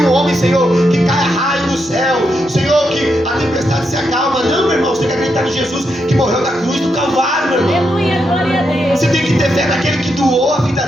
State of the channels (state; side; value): normal; both; correlation 0.82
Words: um homem, Senhor, que caia raio do céu, Senhor, que a tempestade se acalma. Não, meu irmão, você tem que acreditar em Jesus que morreu na cruz do Calvário, meu irmão. Aleluia, glória a Deus. Você tem que ter fé naquele que doou a vida